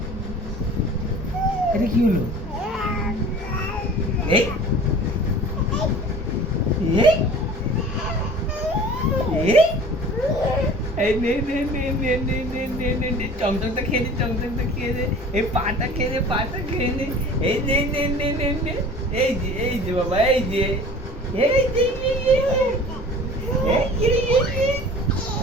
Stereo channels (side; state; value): both; normal; correlation 0.43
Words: এটা কি হলো এই এই এই নে নে নে নে নে নে নে নে নে চমচমটা খেয়ে নে চমচমটা খেয়ে নে এই পাটা খেয়ে নে পাটা খেয়ে নে এই নে নে নে নে নে এই যে বাবা এই যে এই যে